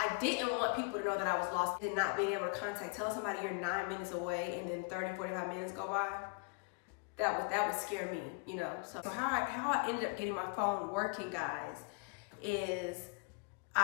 people to know that I was lost and not being able to tell somebody you're 9 minutes away and then 30, 45 minutes go by. That would scare me, you know. So how I ended up getting my phone working, guys, is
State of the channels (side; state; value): right; quieter; 33.7 dB